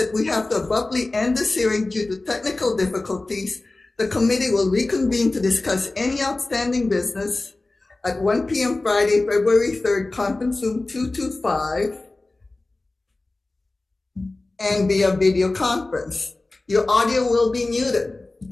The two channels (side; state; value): right; quieter; 3.1 dB